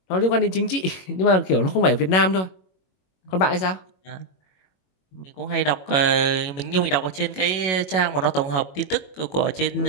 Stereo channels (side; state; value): right; late; 21 ms